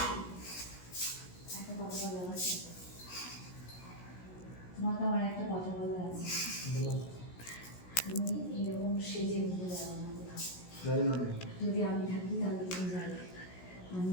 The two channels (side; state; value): right; late; 16 ms